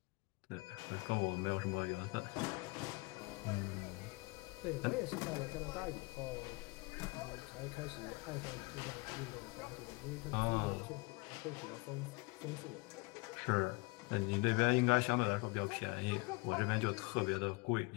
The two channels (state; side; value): quieter; right; 26.1 dB